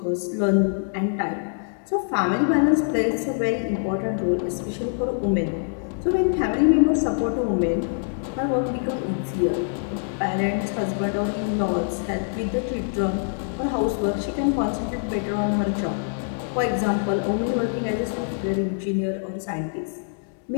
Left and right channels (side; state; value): right; silent; digital silence